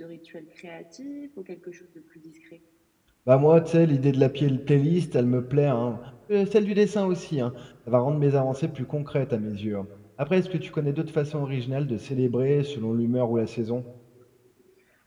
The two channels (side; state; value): both; identical; correlation 1.00